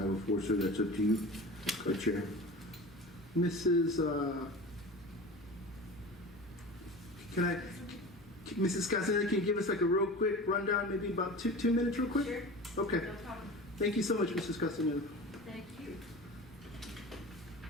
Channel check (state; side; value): noise; left; hum, 28 dB below the sound